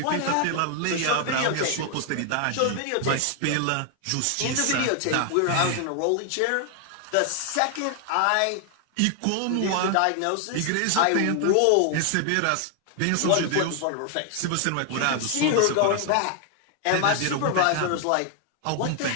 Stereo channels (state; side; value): different; both; correlation 0.00